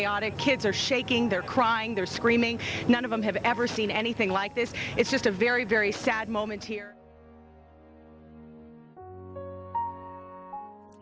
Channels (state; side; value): identical; both; correlation 1.00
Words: Kids are shaking, they're crying, they're screaming. None of them have ever seen anything like this. It's just a very, very sad moment here. There's